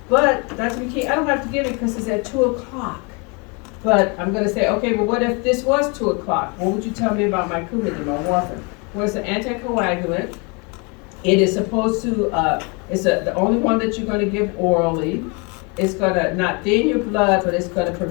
but Dr. McKee, I don't have to give it because it's at 2 o'clock. But I'm going to say, okay, well, what if this was 2 o'clock? What would you tell me about my Coumadin, my warfarin? Well, it's an anticoagulant. It is supposed to, the only one that you're going to give orally. It's going to not thin your blood, but it's going to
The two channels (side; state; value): right; quieter; 31.5 dB